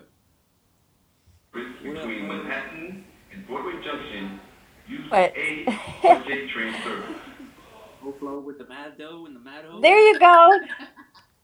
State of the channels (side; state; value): both; identical; correlation 1.00